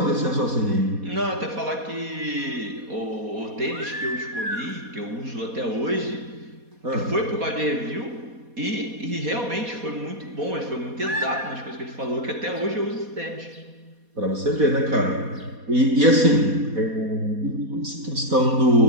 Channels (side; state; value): left; late; 4.2 ms